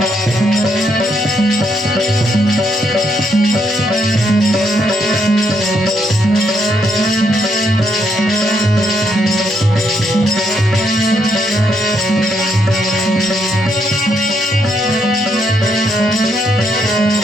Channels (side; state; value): both; normal; correlation 0.75